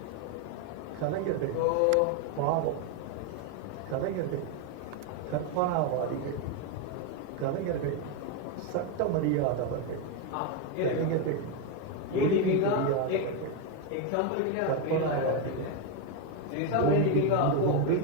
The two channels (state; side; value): different; both; correlation 0.02